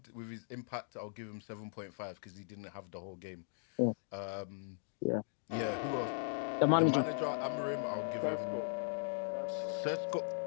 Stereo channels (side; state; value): right; silent; digital silence